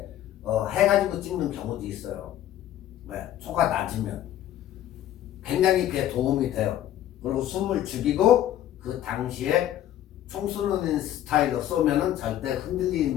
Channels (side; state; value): right; quieter; 12.2 dB